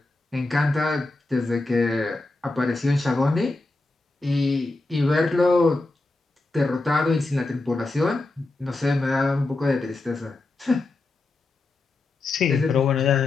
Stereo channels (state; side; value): quieter; right; 3.1 dB